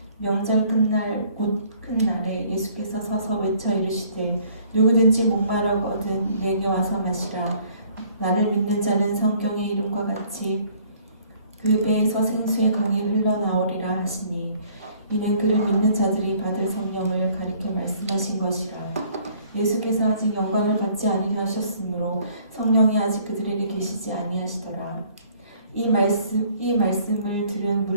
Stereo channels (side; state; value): both; inverted; correlation -0.59